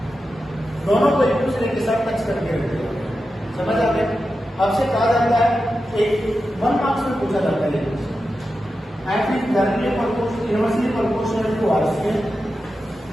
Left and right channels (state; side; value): normal; both; correlation 0.90